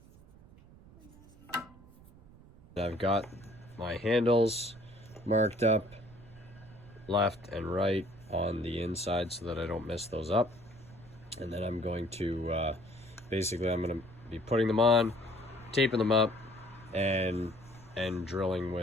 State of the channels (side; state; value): right; noise; rumble, 22 dB below the sound